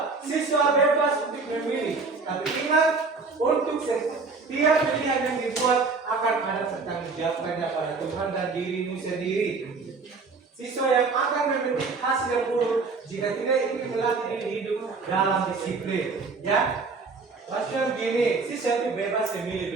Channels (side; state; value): left; quieter; 4.3 dB